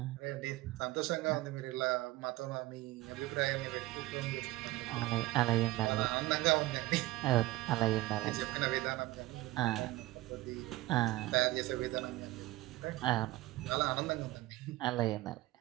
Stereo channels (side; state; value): left; quieter; 18.2 dB